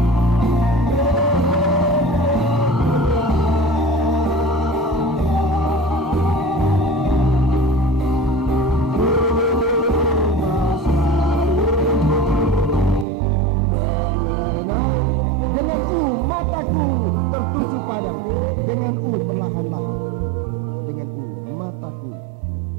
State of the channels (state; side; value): drops out; left; at 13.1 s